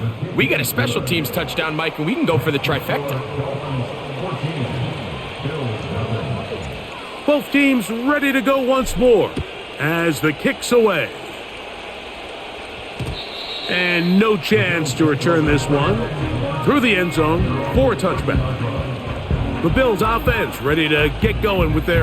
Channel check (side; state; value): both; identical; correlation 1.00